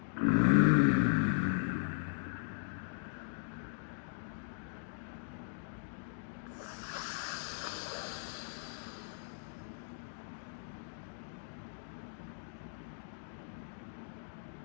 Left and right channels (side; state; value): right; silent; digital silence